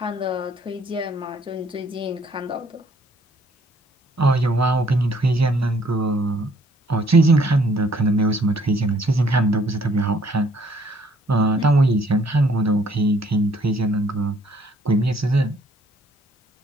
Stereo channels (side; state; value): both; normal; correlation 0.63